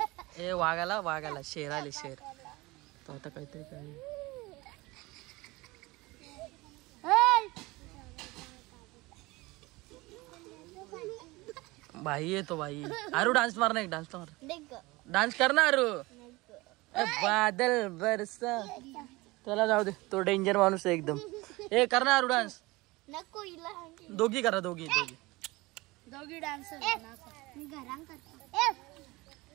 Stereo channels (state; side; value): quieter; left; 22.0 dB